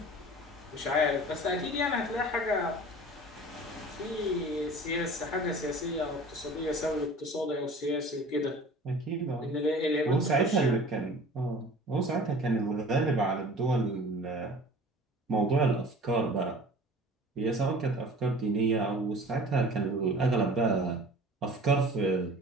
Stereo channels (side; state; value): both; normal; correlation 0.43